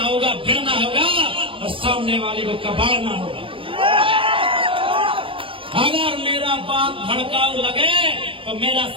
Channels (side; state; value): left; late; 0.25 ms